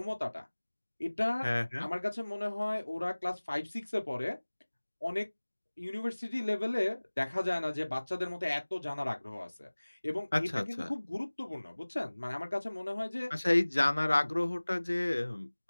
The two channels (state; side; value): inverted; both; correlation -1.00